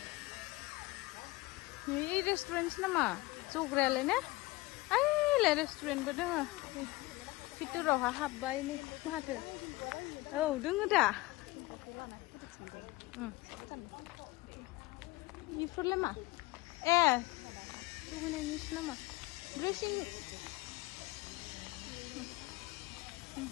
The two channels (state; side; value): quieter; right; 20.8 dB